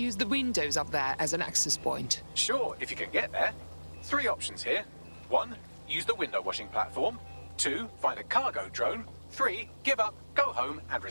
the windows up there as an access point? Sure, if you can get there. 3 options here. 1, use the window washing platform. 2, find a cargo drone. 3, give up, go home, and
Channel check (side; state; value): both; inverted; correlation -1.00